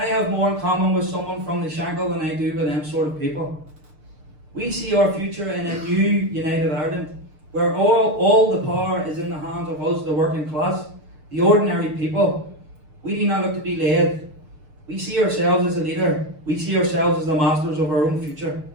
have more in common with someone from the Shankill than I do with them sort of people. We see our future in a new United Ireland, where all the power is in the hands of us, the working class, the ordinary people. We do not look to be led. We see ourselves as a leader. We see ourselves as the masters of our own future.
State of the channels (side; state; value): left; late; 6.7 ms